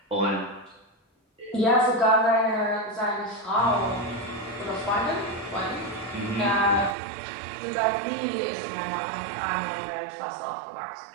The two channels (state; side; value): drops out; left; at 7.0 s